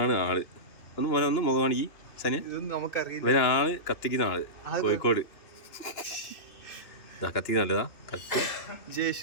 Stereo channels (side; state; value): right; late; 2.9 ms